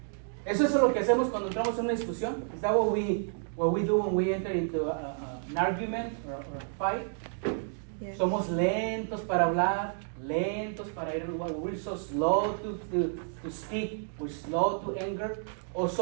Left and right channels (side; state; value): left; silent; digital silence